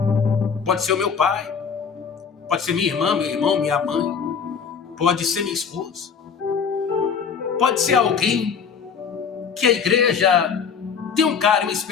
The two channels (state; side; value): quieter; right; 6.5 dB